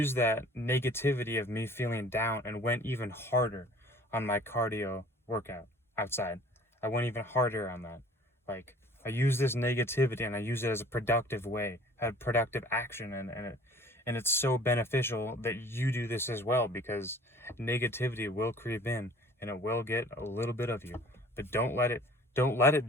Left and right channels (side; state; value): both; normal; correlation 0.50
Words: that negativity of me feeling down and went even harder on my cardio workout outside. I went even harder on that. Like, I use this negativity and I use it as a productive way, a productive action, and it's so beneficial that you do this as well, because negativity will creep in and it will get a little bit of you. But don't let it